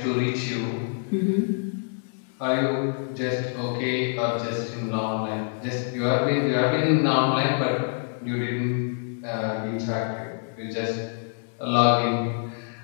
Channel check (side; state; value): right; silent; digital silence